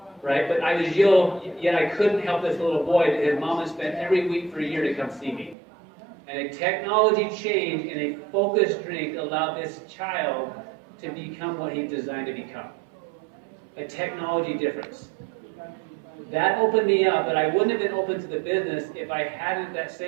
right? But I was ill, yet I couldn't help this little boy that his mom had spent every week for a year to come see me. And a technology change in a focused drink allowed this child to become what he designed to become. A technology difference. That opened me up, but I wouldn't have been open to the business if I hadn't at that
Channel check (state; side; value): drops out; left; at 5.6 s